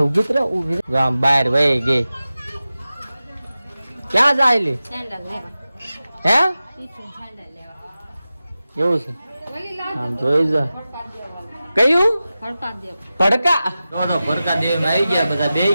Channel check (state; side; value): inverted; both; correlation -0.95